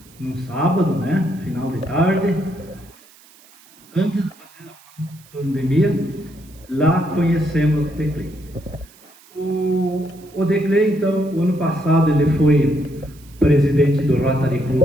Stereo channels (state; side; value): noise; right; hiss, 26 dB below the sound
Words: num sábado, final de tarde, antes da pandemia, lá conhecemos o Declay. O Declay, então, o ano passado ele foi presidente do Rotary